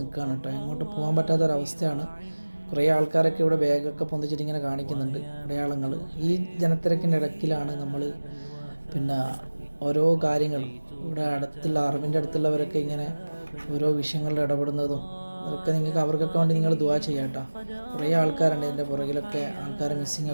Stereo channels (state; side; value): inverted; both; correlation -1.00